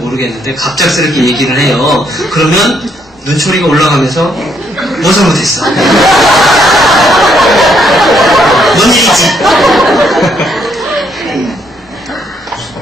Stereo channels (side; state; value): both; normal; correlation 0.72